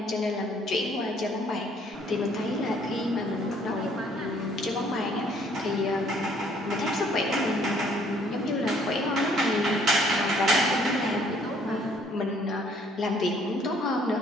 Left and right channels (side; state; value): both; normal; correlation 0.62